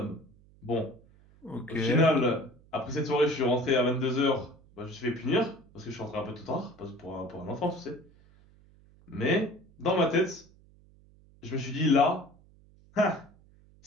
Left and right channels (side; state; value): right; noise; hum, 27 dB below the sound